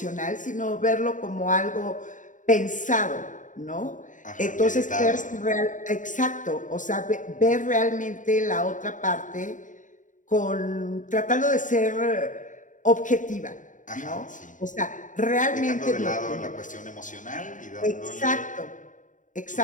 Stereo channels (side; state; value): right; late; 0.37 ms